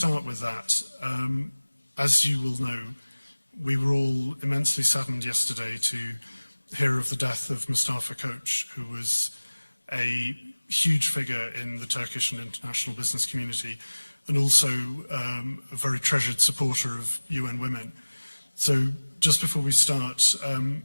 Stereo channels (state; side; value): inverted; both; correlation -1.00